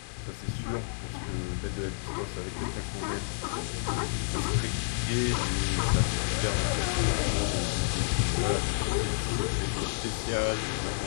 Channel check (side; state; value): right; silent; digital silence